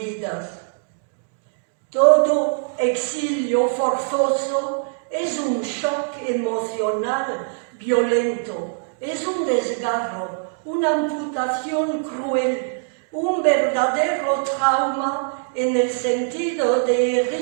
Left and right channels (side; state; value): left; silent; digital silence